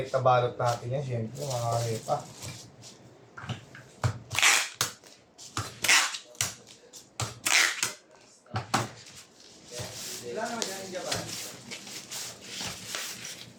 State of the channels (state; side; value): identical; both; correlation 1.00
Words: balot natin yan, syempre, mga repa. Ilan naman dyan yung Japan?